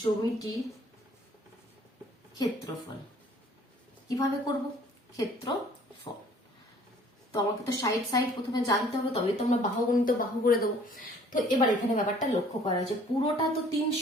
জমিটি ক্ষেত্রফল। কিভাবে করব, ক্ষেত্রফল। তো আমাকে তো সাইড প্রথমে জানতে হবে, তবে তো আমরা বাহু গণিত বাহু করে দেবো। তো এবার এখানে ব্যাপারটা লক্ষ্য করা হয়েছে, পুরোটা তো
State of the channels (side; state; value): both; normal; correlation 0.55